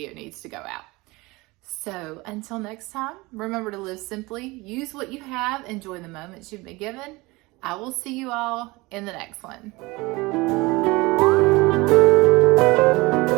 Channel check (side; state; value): left; quieter; 22.8 dB